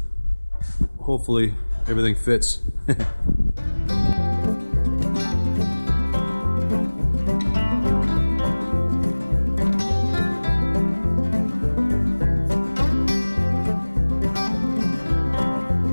hopefully everything fits.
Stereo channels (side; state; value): both; inverted; correlation -1.00